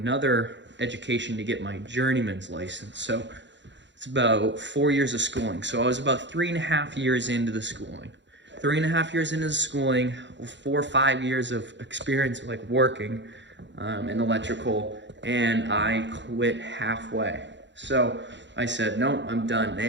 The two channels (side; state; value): left; late; 0.53 ms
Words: education to get my journeyman's license. So it's about 4 years of schooling. So I was about 3.5 years into the schooling. 3.5 years into the schooling, 4 or 5 years of experience like working in electrical, and I quit halfway. So I said, no, I'm done. And